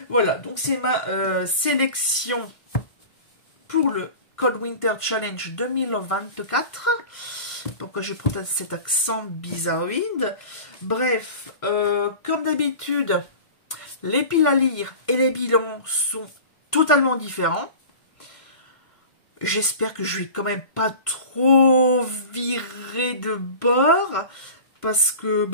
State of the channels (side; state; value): right; late; 1.6 ms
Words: Voilà, donc c'est ma sélection pour le Cold Winter Challenge 2024. Pourquoi je prends cet accent bizarroïde? Bref, comme d'habitude, les piles à lire et les bilans sont totalement différents. J'espère que je vais quand même pas trop virer de bord. Parce